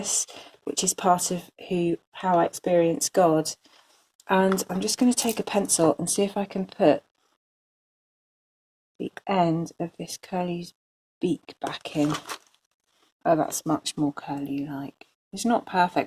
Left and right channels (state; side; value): identical; both; correlation 1.00